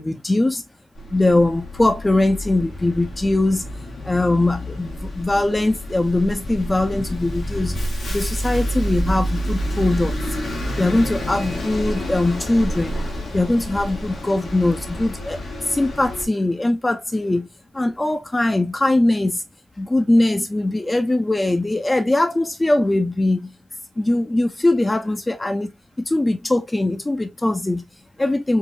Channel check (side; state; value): both; normal; correlation 0.98